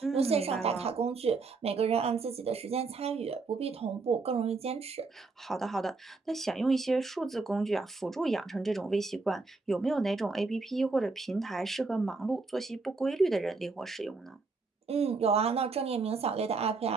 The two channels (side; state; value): left; quieter; 4.0 dB